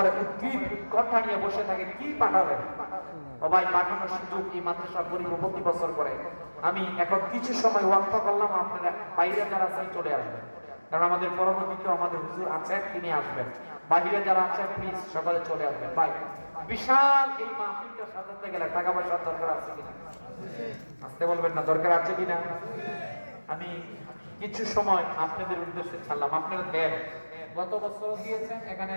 উদ্ভিদ কথা নিয়ে বসে থাকে, কি পাঠাবেন? সবাই পাঠানোর সুযোগ এই মাদ্রাসা গরিব প্রতি বছর করে। আমি এখন কিছু সময় ওয়াক্ফ করলাম, আপনারা বাইরে যারা আছেন চলে আসবেন, কারণ আমাদের পরবর্তীতে আমাদের হুজুর আছেন, তিনি আসবেন। বাইরে যারা আছেন প্লিজ সকালে চলে আসবেন। ভাই, বিশাল এই মাহফিলটা সাজাতে গেলে টাকা পয়সার দরকার আছে কিনা? আসতে বলবেন না, দরকার আছে কিনা? আমি কিছু সময় আপনাদের উদ্দেশ্যে ছাড়লাম, আপনারা দেন। গত বছর দিয়েছেন, এখানে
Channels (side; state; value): both; inverted; correlation -1.00